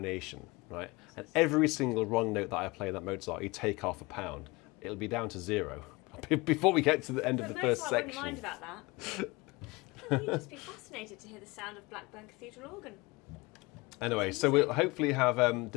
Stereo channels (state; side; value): quieter; right; 24.0 dB